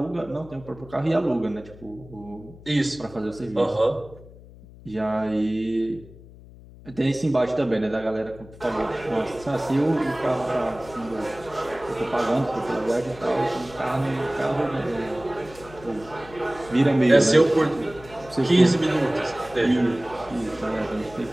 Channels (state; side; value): noise; left; hum, 20 dB below the sound